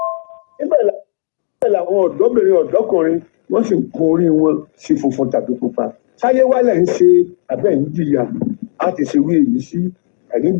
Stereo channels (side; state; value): right; silent; 70 dB below the other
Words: Níbẹ̀ làwọn ọ̀dọ́bìnrin ọ̀dọ́kùnrin wọ́n sì ń kún orí wọn sí funfun tàbí pupa. Sáyé wálẹ̀ ń ṣe abẹ́ ń jìyà á ti ṣerú èyí sí. Ẹ̀yin